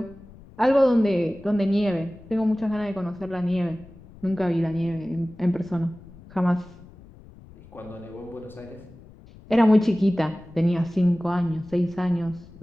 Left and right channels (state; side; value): noise; left; rumble, 21 dB below the sound